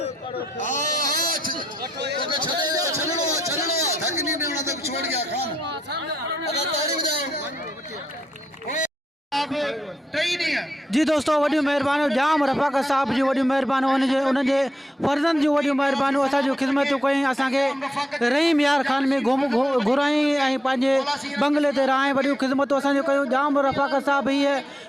छोड़ गया खान जी दोस्तों वॾियूं महिरबानियूं जाम रफ़ाक़त साहब जी वॾियूं महिरबानियूं उन्हनि जे फर्ज़नि जूं वॾियूं महिरबानियूं असांजूं ख़िदमतूं कयूं असांखे रहीम यार खान में घुराई ऐं पंहिंजे बंगले ते रहाई वॾियूं ख़िदमतूं असांजूं कयूं जाम रफ़ाक़त साहब हीअ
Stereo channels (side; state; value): both; normal; correlation 0.82